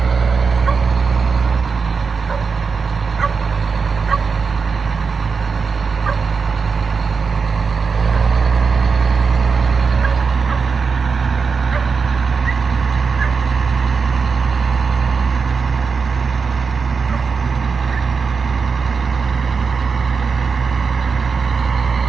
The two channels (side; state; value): left; quieter; 5.3 dB